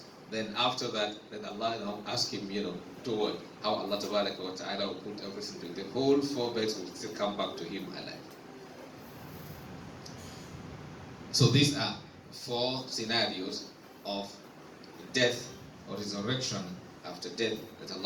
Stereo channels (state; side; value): identical; both; correlation 1.00